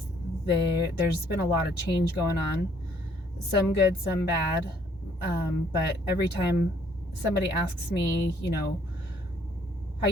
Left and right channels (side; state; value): both; normal; correlation 0.64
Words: There's been a lot of change going on, some good, some bad. But every time somebody asks me, how